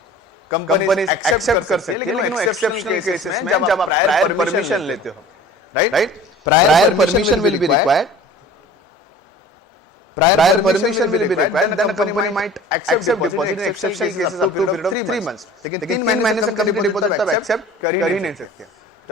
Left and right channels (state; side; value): normal; both; correlation 0.44